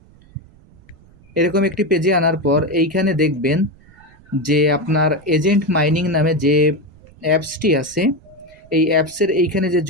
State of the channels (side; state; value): right; noise; rumble, 26 dB below the sound